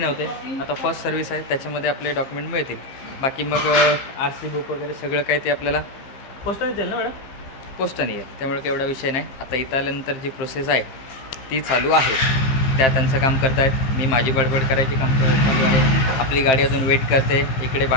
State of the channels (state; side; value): late; right; 15 ms